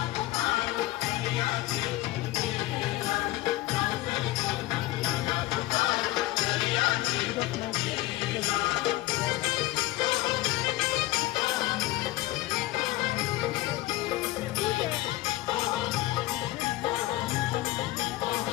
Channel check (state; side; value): quieter; right; 17.7 dB